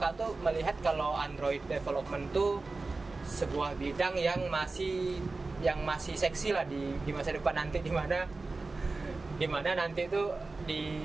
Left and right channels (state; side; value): quieter; left; 3.6 dB